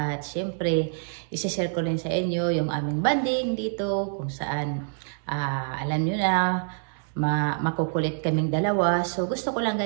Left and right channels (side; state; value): left; silent; digital silence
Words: syempre, isi-share ko rin sa inyo yung aming banding dito kung saan, alam nyo na, makukulit kaming dalawa. So, gusto ko lang